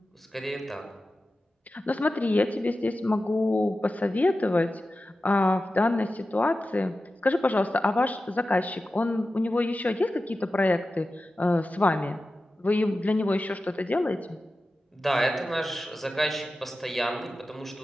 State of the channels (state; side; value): normal; both; correlation 0.93